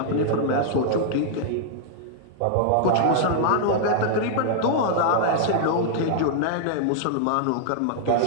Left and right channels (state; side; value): different; both; correlation -0.01